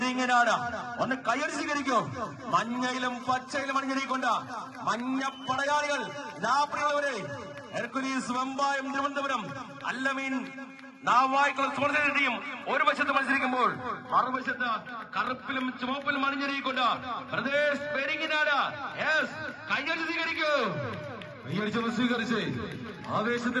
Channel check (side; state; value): both; identical; correlation 1.00